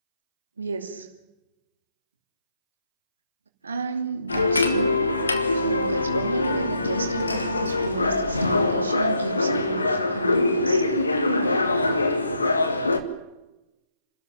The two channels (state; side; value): inverted; both; correlation -0.77